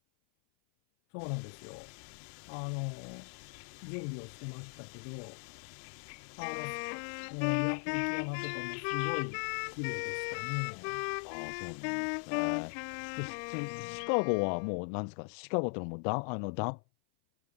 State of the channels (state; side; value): silent; right; 52 dB below the other